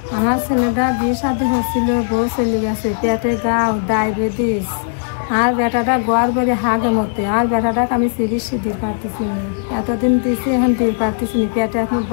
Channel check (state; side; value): silent; right; 66 dB below the other